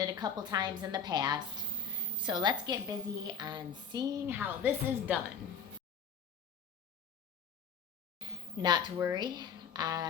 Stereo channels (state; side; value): quieter; right; 6.2 dB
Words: a couple times in the past. So let's get busy on seeing how this is done. Not to worry,